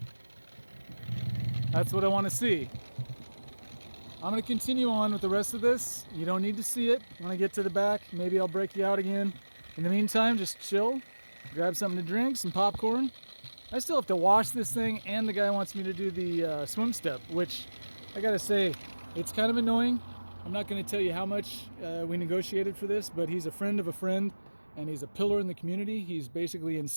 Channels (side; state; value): both; inverted; correlation -1.00